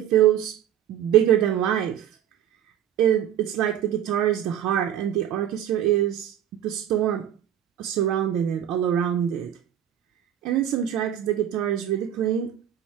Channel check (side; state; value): left; quieter; 10.5 dB